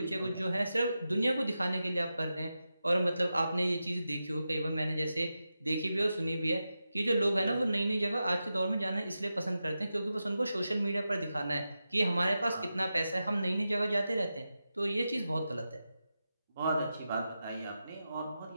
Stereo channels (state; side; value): inverted; both; correlation -0.91